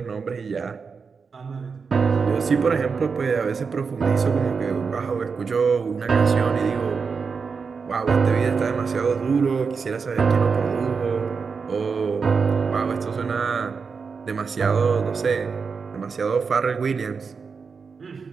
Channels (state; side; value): quieter; left; 5.3 dB